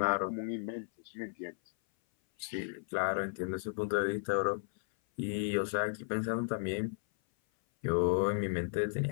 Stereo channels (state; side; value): silent; right; 55 dB below the other